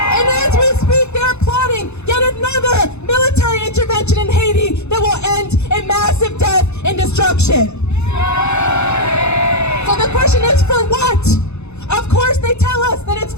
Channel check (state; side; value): late; right; 0.81 ms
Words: And as we speak, they're plotting yet another military intervention in Haiti that will end in massive death and destruction. So the question is, for what? Of course they tell us that it's